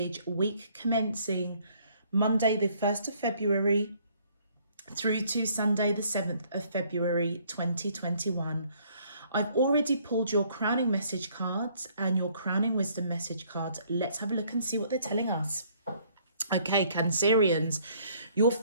week commencing Monday, the 1st of February, through to Sunday, the 7th of February, 2021. I've already pulled your crowning message cards and your crowning wisdom message cards. Let's have a look and see what they're telling us. Okay, Cancerians, your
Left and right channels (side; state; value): both; inverted; correlation -0.63